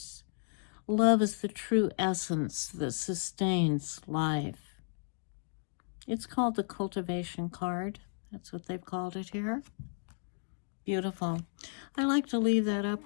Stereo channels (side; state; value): right; silent; digital silence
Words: Love is the true essence that sustains life. It's called the cultivation card. That's what they've called it here. Beautiful. I like to leave that